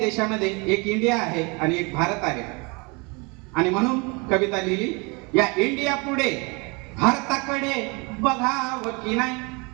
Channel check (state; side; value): quieter; left; 29.3 dB